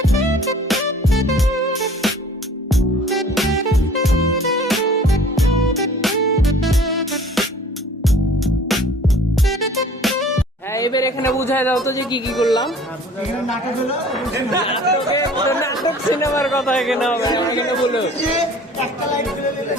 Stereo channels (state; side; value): normal; both; correlation 0.49